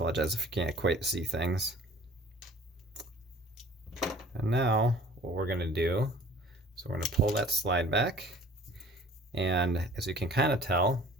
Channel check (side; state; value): both; normal; correlation 0.50